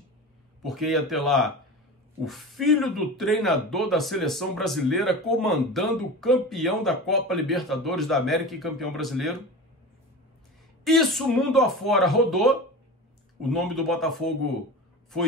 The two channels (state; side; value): normal; both; correlation 0.30